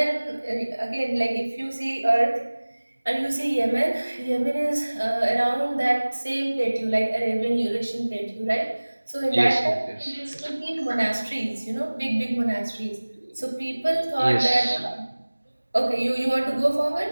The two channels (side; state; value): both; inverted; correlation -1.00